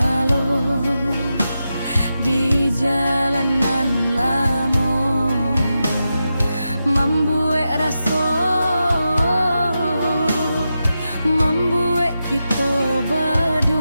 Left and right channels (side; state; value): both; inverted; correlation -0.89